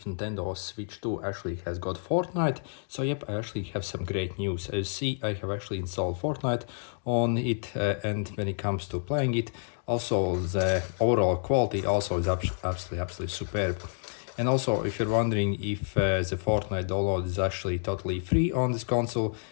Nintendo Switch 2 actually has got Fortnite? So yep, I actually have some great news. As you see, I have actually installed Fortnite on it, and when it comes to playing it, also the overall quality also is absolutely superb. And also, if you're wondering if the Fortnite download is actually totally free on this console,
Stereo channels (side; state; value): right; silent; digital silence